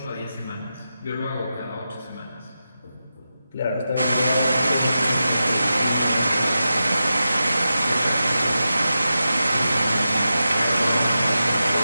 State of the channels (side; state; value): both; inverted; correlation -0.91